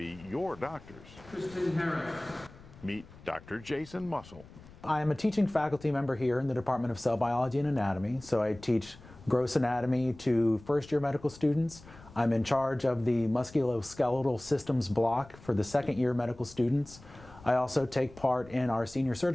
your doctors? Kristen Harris. Meet Dr. Jason Mussel. I am a teaching faculty member here in the Department of Cell Biology and Anatomy, so I teach gross anatomy to first-year medical students. I'm in charge of the musculoskeletal systems block for the second-year medical students. I also take part in our senior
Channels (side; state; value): left; noise; rumble, 21 dB below the sound